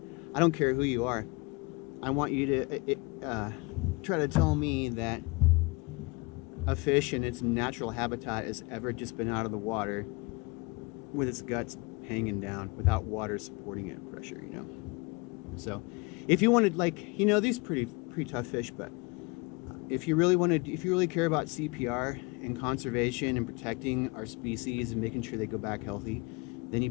I don't care who you are. I want you to try to tell me that a fish in its natural habitat has ever just been out of the water with its guts hanging down without water supporting it, pressure, you know. So if you wanted, like, you know, these pretty tough fish, but if you really care about CPR and conservation and protecting our species and making sure they go back healthy, then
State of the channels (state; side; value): quieter; right; 27.2 dB